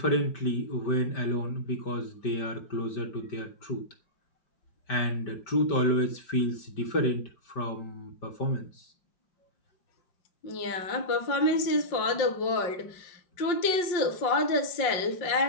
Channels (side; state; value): right; late; 5.6 ms